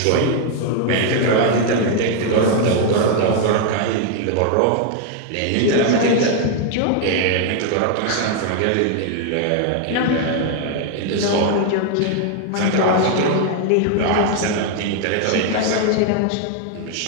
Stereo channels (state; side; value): different; both; correlation 0.00